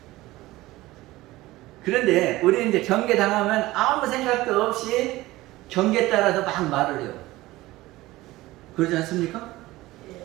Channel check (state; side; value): quieter; left; 18.2 dB